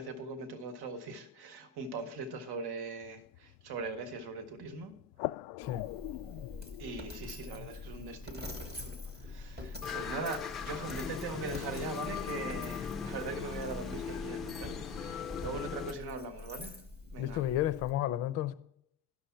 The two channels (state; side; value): quieter; right; 3.3 dB